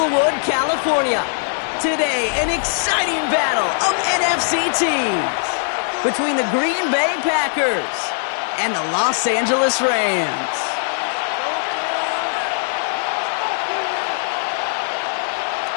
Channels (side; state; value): right; silent; digital silence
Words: California. Today, an exciting battle of NFC teams between the Green Bay Packers and the Los Angeles Rams.